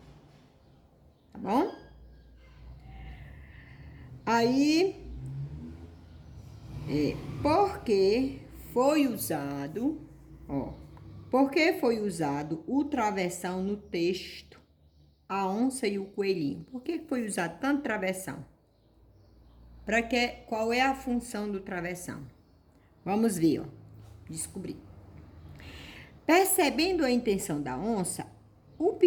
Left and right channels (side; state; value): both; identical; correlation 1.00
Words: Tá bom? Aí, porque foi usado, ó, porque foi usado o travessão no texto, a onça e o coelhinho? Por que foi usado tanto travessão? Para que, qual é a função do travessão? Vamos ver, ó, descobrir. Percebendo a intenção da onça, o